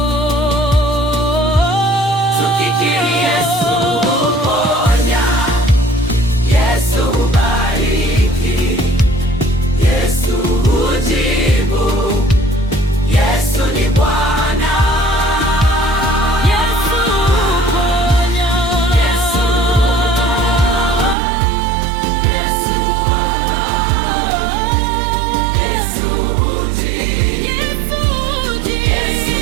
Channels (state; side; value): drops out; left; at 21.2 s